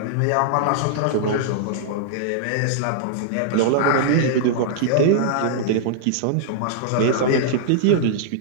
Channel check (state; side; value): different; both; correlation -0.01